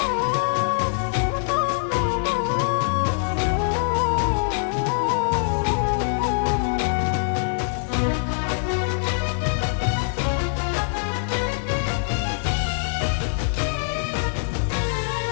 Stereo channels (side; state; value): right; silent; digital silence